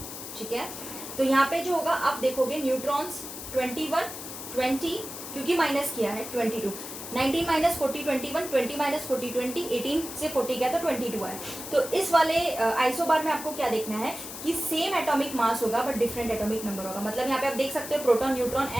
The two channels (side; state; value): left; noise; hiss, 10 dB below the sound